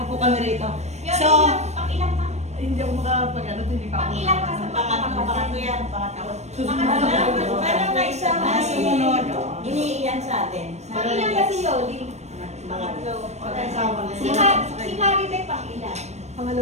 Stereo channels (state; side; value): late; left; 0.32 ms